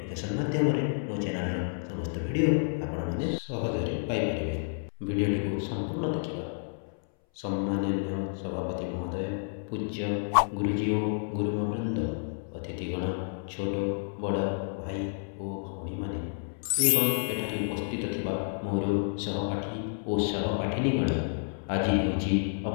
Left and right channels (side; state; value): right; silent; 58 dB below the other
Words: माध्यम मो चैनल समस्त वीडियो आपण माने सहजरे पाई परिबे। वीडियोटी को संपूर्ण देखा। सम्माननीय सभापति महोदय, पूज्य गुरुजी और गुरुमा वृंद, अतिथिगण, छोट बड़ भाई और भौणी माने एवं एठारे उपस्थित थिबा मोर सहपाठी और सहपाठिनीगण, आज होची